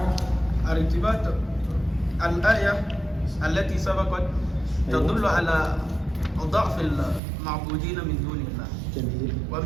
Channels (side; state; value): left; drops out; at 7.2 s